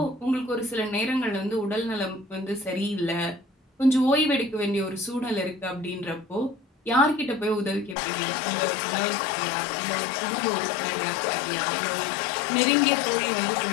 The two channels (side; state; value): right; drops out; at 8.0 s